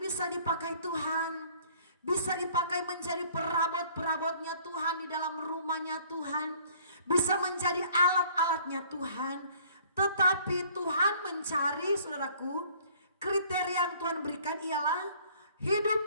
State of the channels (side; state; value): both; inverted; correlation -0.56